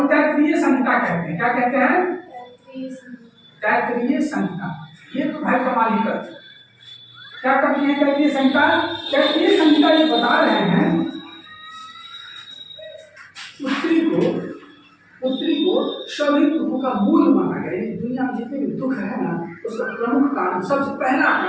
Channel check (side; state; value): both; identical; correlation 1.00